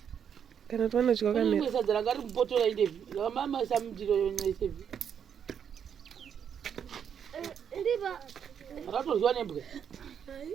kana kuti vanodya kamera sadza ranga riri mupoto raindevi ramamasa mundiro yonaisevi ratoryiwa nembwa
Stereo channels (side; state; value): left; quieter; 8.0 dB